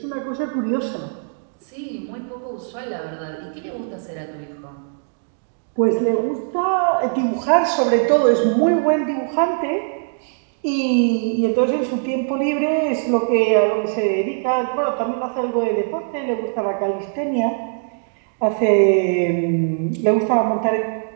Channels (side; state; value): left; silent; digital silence